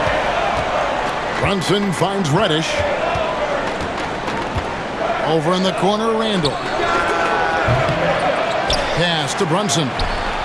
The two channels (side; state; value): both; identical; correlation 1.00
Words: Brunson finds Reddish. Over in the corner, Randall. Pass to Brunson.